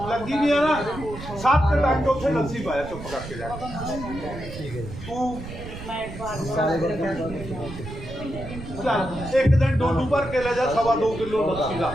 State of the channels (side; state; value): right; noise; rumble, 11 dB below the sound